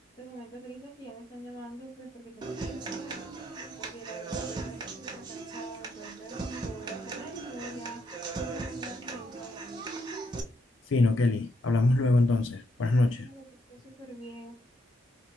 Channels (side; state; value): both; normal; correlation 0.77